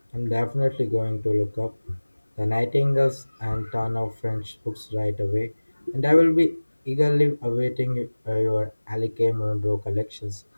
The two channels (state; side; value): inverted; both; correlation -1.00